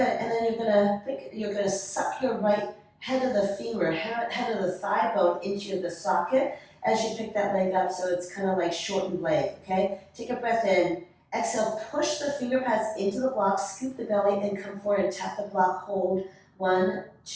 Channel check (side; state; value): both; identical; correlation 1.00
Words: And then you're gonna suck your right head of the femur, head of the thigh bone into the socket as you pick that leg up, so it's kind of like shortened leg. Okay. Take a breath in. Exhale. Push the finger pads into the block. Scoop the belly and come forward and tap the block. Hold 1,